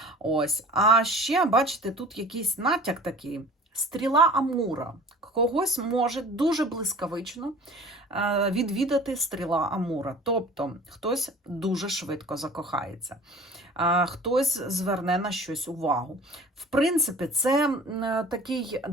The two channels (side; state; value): both; normal; correlation 0.44